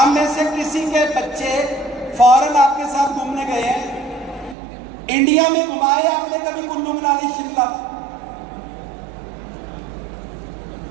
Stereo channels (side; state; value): left; drops out; at 4.5 s